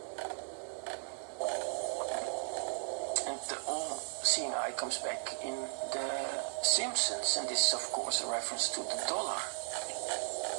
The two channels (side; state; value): left; silent; digital silence